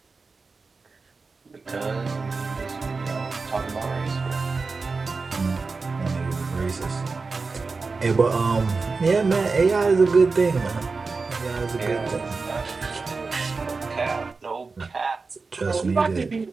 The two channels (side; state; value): left; quieter; 4.2 dB